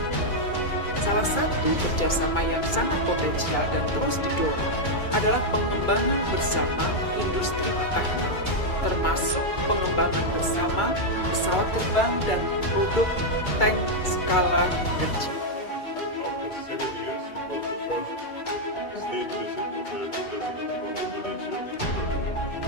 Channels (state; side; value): late; right; 2.3 ms